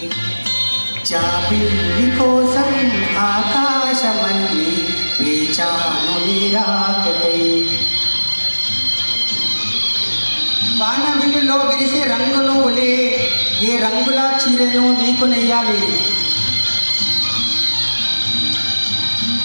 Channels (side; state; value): both; inverted; correlation -1.00